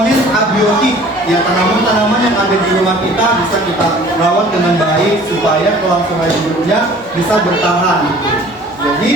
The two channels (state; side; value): normal; both; correlation 0.49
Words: abiotik, ya tanaman-tanaman yang ada di rumah kita bisa kita rawat dengan baik supaya kelangsungan hidupnya bisa bertahan.